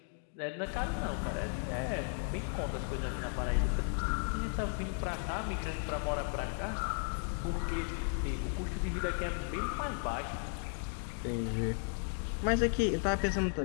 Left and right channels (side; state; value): right; silent; 54 dB below the other